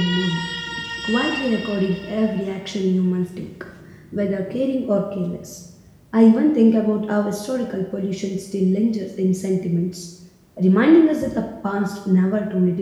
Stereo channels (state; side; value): identical; both; correlation 1.00